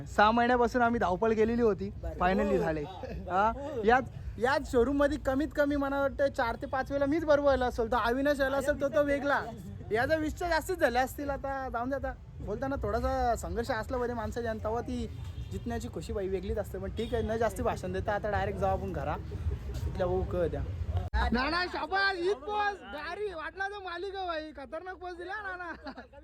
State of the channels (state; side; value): identical; both; correlation 1.00